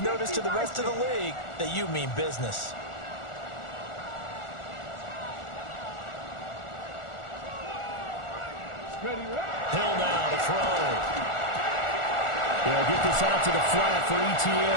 notice to the rest of the league that you mean business. Hill now to throw. They'll get this out to the flat for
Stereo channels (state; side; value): late; right; 1.4 ms